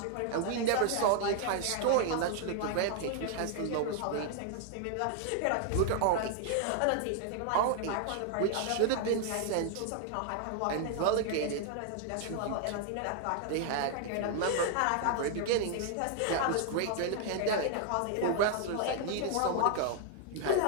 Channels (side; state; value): both; different; correlation 0.00